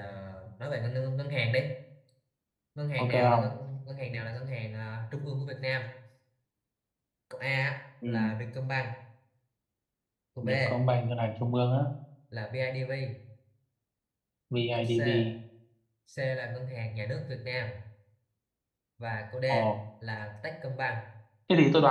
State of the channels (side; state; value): both; identical; correlation 1.00